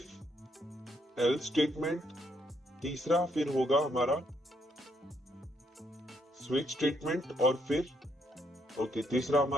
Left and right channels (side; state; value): both; normal; correlation 0.73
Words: एल्स स्टेटमेंट, तीसरा फिर होगा हमारा स्विच स्टेटमेंट, और फिर तीसरा